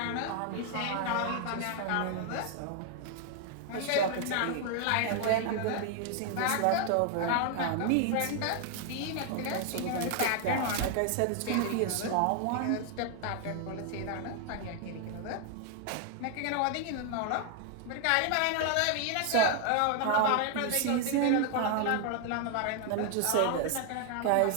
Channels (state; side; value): different; both; correlation 0.00